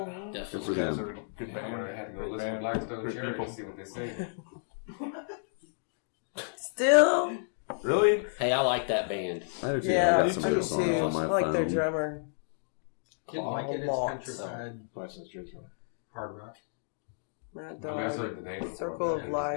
Mhm. Definitely. Those guys are good Yeah, band. we're gonna have to go Great listen band. to Blackstone Good Cherry people. to see what they sing. Still? Really? Hey, I like that band. I do too. Yeah, I me got some too. of those songs on my I like their phone. drummer. Didn't like it. It's Lots. countryside License Jersey. hard rock. Matt I mean, I've Dawes. heard the name before, Circle but of it just Life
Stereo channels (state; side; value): silent; right; digital silence